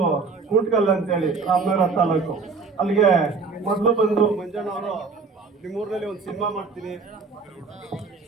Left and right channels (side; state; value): left; quieter; 4.6 dB